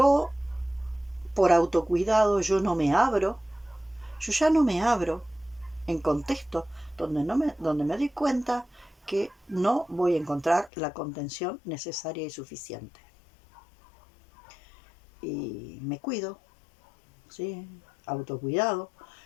por autocuidado, yo no me abro, yo ya no me abro en contextos donde me doy cuenta que no voy a encontrar la contención necesaria y suficiente. Y me cuido, ¿sí? Autocuidado.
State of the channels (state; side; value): drops out; right; at 10.7 s